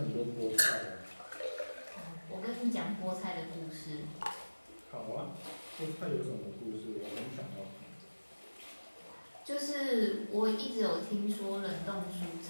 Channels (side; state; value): both; inverted; correlation -1.00